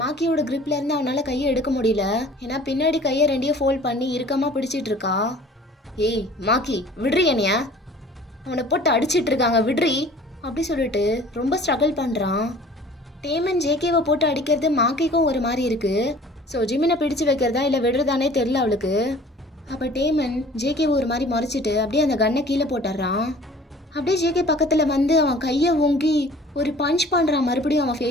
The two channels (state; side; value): normal; both; correlation 0.48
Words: மாக்கியோட gripல இருந்து அவனால் கையை எடுக்க முடியல. ஏன்னா பின்னாடி கையை 2 ஃபோல்ட் பண்ணி இறுக்கமாக பிடிச்சிட்டு இருக்கா. ஏய் மாக்கி விட்றி என்னைய, அவனை போட்டு அடிச்சிட்டு இருக்காங்க விட்றி அப்படி சொல்லிட்டு ரொம்ப ஸ்ட்ரகிள் பண்ணுறான். டேமன் ஜேகேவை போட்டு அடிக்கிறது மாக்கிக்கும் ஒரு மாதிரி இருக்கு. ஸோ ஜிமினை பிடிச்சு வைக்கிறதா இல்லை விடுறதானே தெரில அவளுக்கு. அப்போ டேமன் ஜேகேவை ஒரு மாதிரி முறைச்சிட்டு அப்படியே அந்த கன்னை கீழே போட்டுடுறான். அப்படியே ஜேகே பக்கத்தில் வந்து அவன் கையை ஓங்கி ஒரு பஞ்ச் பண்ணுறான் மறுபடியும் அவன்